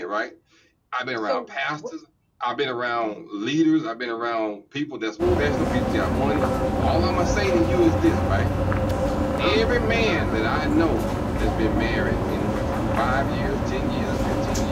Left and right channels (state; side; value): identical; both; correlation 1.00